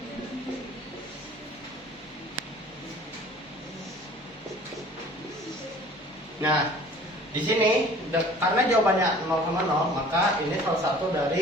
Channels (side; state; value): both; normal; correlation 0.48